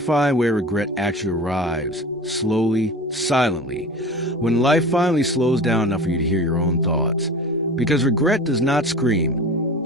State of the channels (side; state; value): both; normal; correlation 0.36